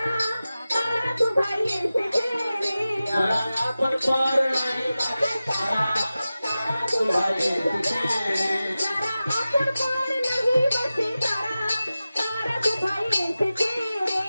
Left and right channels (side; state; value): both; inverted; correlation -0.95